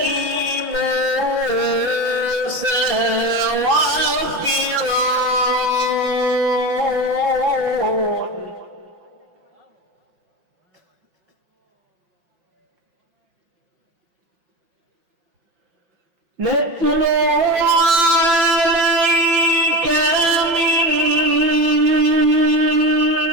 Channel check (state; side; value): late; left; 5.6 ms